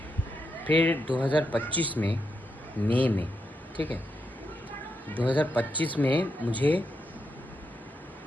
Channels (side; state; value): both; normal; correlation 0.83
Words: फिर 2025 में मई में, ठीक है, 2025 में मुझे